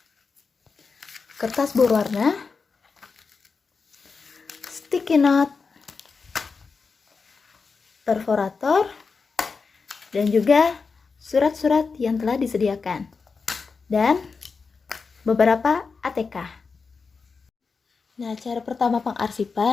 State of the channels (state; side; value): quieter; right; 4.9 dB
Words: kertas berwarna, sticky note, perforator, dan juga surat-surat yang telah disediakan, dan beberapa ATK. Nah, cara pertama